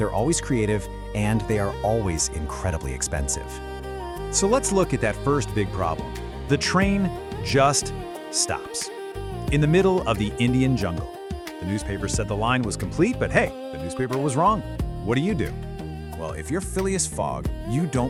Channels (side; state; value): both; identical; correlation 1.00